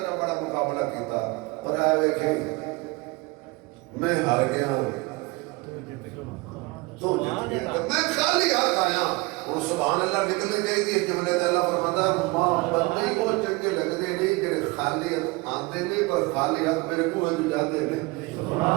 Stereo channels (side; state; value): left; quieter; 24.4 dB